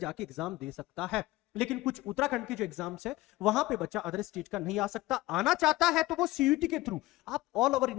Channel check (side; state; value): right; quieter; 18.6 dB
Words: एग्जाम दे सकता है, लेकिन कुछ उत्तराखंड के जो एग्जाम्स है वहां पे बच्चा अदर स्टेट का नहीं आ सकता। आना चाहता है तो वो सीयूटी के थ्रू आप ऑल ओवर